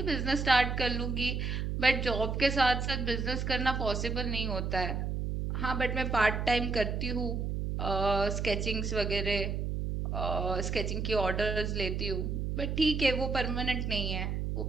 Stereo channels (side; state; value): right; noise; hum, 1 dB below the sound